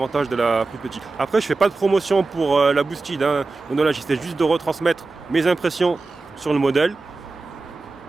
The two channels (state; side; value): quieter; left; 3.7 dB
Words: de la plus petite. Après je fais pas de promotion pour la Boosted, hein. Donc là j'essaie juste de retransmettre mes impressions sur le modèle.